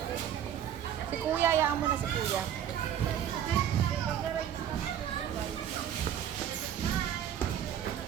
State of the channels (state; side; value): quieter; left; 9.8 dB